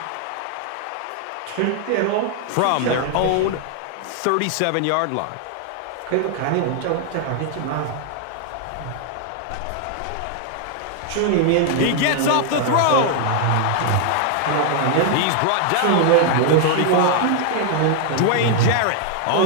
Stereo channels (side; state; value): both; different; correlation 0.00